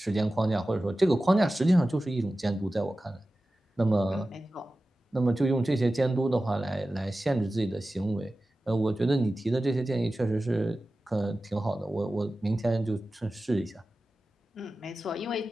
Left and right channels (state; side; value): normal; both; correlation 0.95